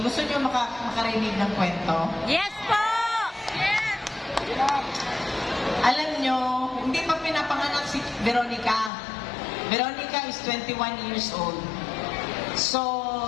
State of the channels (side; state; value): right; drops out; at 8.9 s